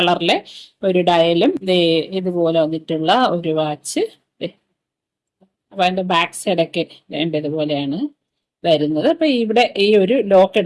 ഒരു ഡയലും ഇതുപോലെ വന്നിട്ടുള്ള ഒരു വാച്ച്. അപ്പൊ അതിന്റെ ബാക്ക് സൈഡൊക്കെ വേണ്ട ഇതുപോലെയാണ് വരുന്നത്. അപ്പൊ ഇവിടെ ഈ ഒരു ലോക്ക്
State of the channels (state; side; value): identical; both; correlation 1.00